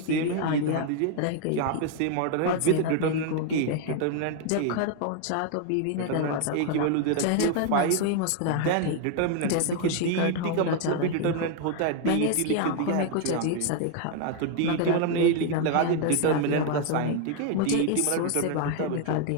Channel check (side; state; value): both; different; correlation 0.00